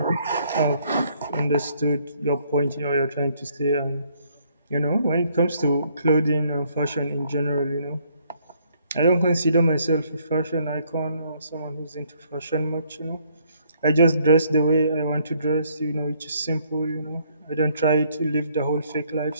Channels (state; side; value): inverted; both; correlation -0.67